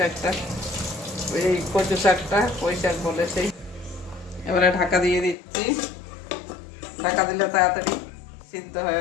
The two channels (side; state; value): right; drops out; at 5.4 s